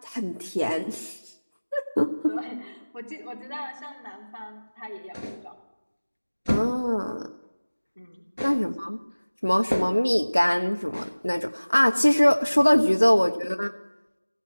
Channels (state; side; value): inverted; both; correlation -1.00